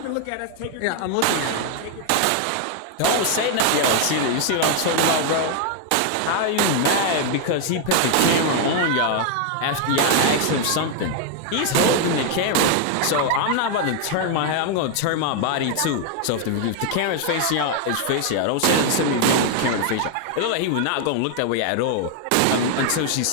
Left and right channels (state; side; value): different; both; correlation 0.00